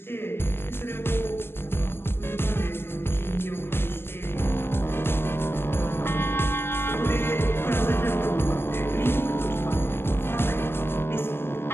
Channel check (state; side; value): late; right; 0.11 ms